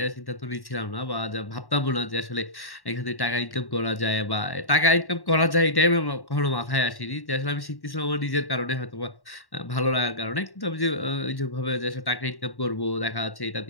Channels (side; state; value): right; late; 1.1 ms